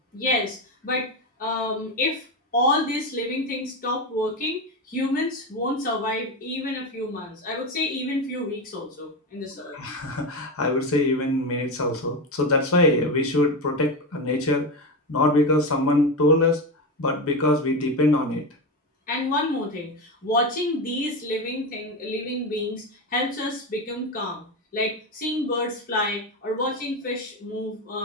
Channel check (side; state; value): both; normal; correlation 0.16